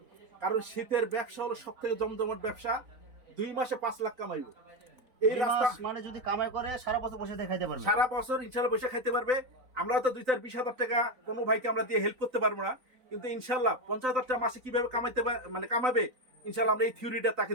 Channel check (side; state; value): left; late; 3.9 ms